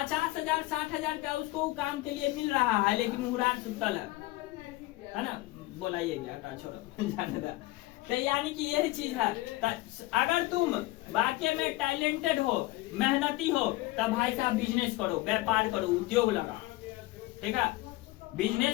60,000 का उसको काम के लिए मिल रहा है, लेकिन हुरार सुतल है ना, बोलाइए गया छोड़ो जाने दा। तो यानी कि यही चीज है। अगर तुम वाकई में टैलेंटेड हो, मेहनती हो, तब भाई साहब बिजनेस करो, व्यापार करो, उद्योग लगा, ठीक है।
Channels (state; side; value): quieter; right; 19.3 dB